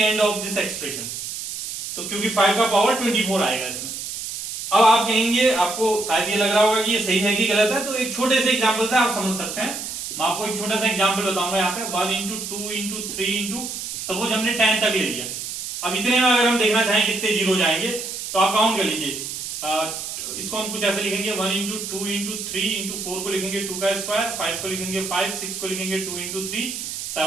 of this expression. तो क्योंकि 5 का पावर 24 आएगा इसमें। अब आप कहेंगे, आपको शायद ये लग रहा होगा कि ये सही है कि गलत है, तो एक छोटे से एग्जाम्पल से आप समझ सकते हैं। मैं आपको एक छोटा सा एग्जाम्पल बताऊंगा यहाँ पे। 1 इंटू 2 इंटू 3 इंटू, सपोज हमने 10 तक ले लिया। अब इतने में अगर हम देखना चाहें कितने जीरो जाएंगे तो आप काउंट कर लीजिए। इसको हम कुछ ऐसे लिखेंगे 1 इंटू 2 इंटू 3 इंटू 4 को लिखेंगे 2 का स्क्वायर, 5 को लिखेंगे 5, 6 को लिखेंगे 2 इंटू 3,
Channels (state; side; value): noise; right; hiss, 7 dB below the sound